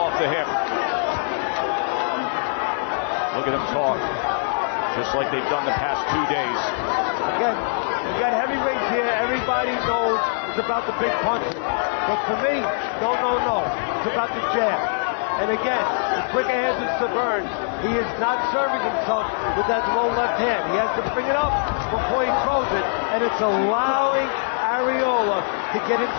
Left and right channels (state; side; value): silent; right; digital silence